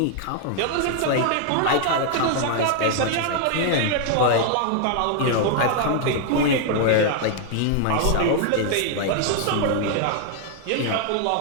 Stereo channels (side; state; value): both; different; correlation 0.00